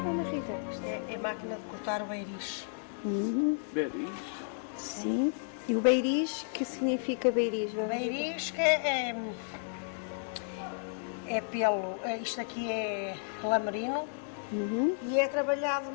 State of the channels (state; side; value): silent; right; digital silence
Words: Rita? Isto é máquina de cortar o beiriz. Beris? Sim. E o beiriz, que significa beiriz? Dona Rita? Beiriz que é pelo. Isto aqui é lamerino e é trabalhado